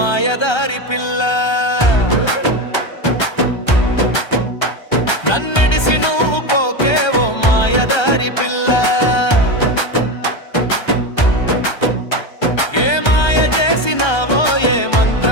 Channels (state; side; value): late; right; 1.3 ms